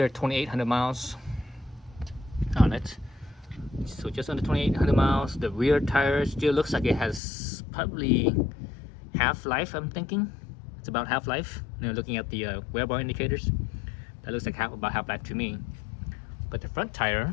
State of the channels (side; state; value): right; drops out; at 7.2 s